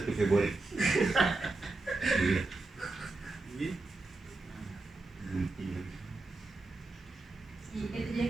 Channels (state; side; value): quieter; left; 3.3 dB